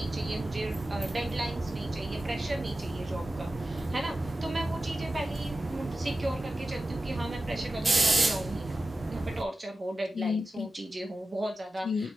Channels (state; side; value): normal; both; correlation 0.94